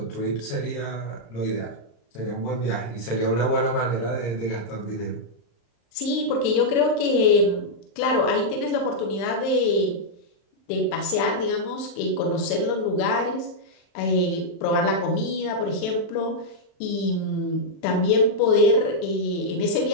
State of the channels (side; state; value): right; late; 35 ms